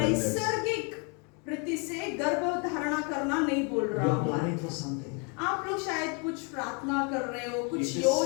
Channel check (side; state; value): right; quieter; 35.1 dB